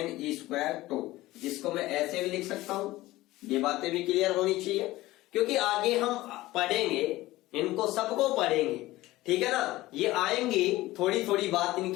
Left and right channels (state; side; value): quieter; right; 17.7 dB